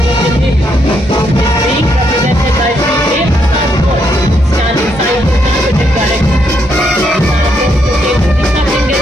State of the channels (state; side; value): normal; both; correlation 0.76